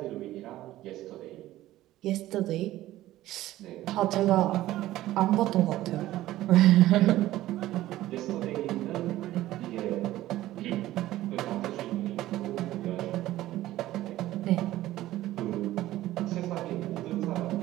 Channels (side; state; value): left; quieter; 15.2 dB